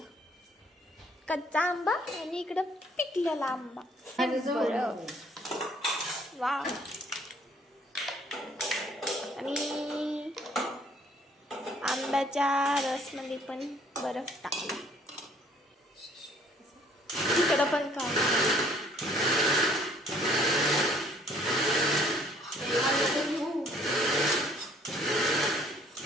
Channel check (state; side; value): normal; both; correlation 0.60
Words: कच्चा आंबा आणि इकडं पिकलेला आंबा. बरं. वा. आणि आंब्याच्या रसमध्ये पण बर्फ टाकला. इकडं पण काय